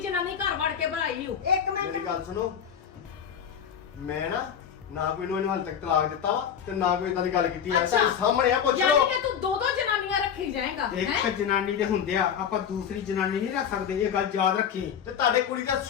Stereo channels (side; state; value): right; quieter; 8.2 dB